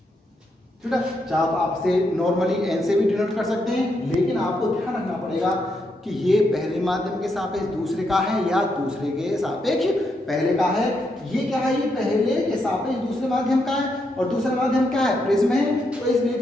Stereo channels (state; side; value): normal; both; correlation 0.80